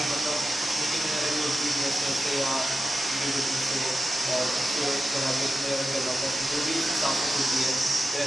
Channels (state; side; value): normal; both; correlation 0.92